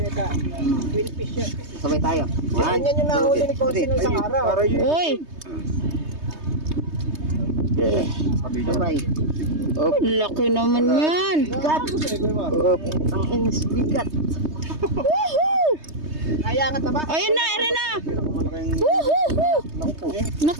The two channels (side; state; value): left; late; 3.2 ms